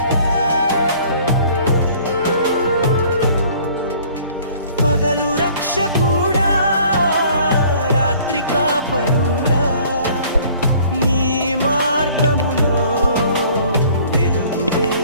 పగలు రక్షకుడా, రాత్రి కాపరుడా, నీ మార్గములో వెలుగువే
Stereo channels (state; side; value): inverted; both; correlation -0.53